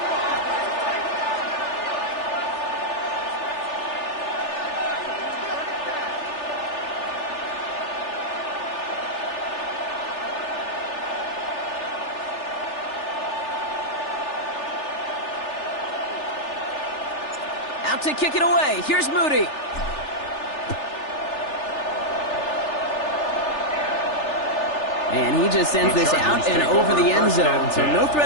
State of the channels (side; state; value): right; late; 3.4 ms